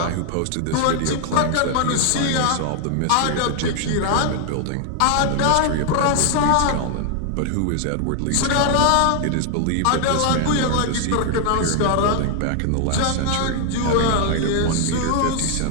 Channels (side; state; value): both; different; correlation 0.00